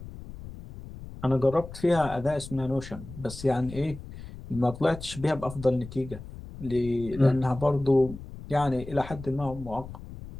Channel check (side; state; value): left; noise; rumble, 13 dB below the sound